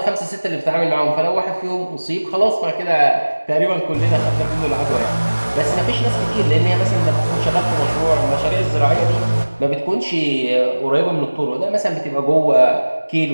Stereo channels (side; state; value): both; inverted; correlation -1.00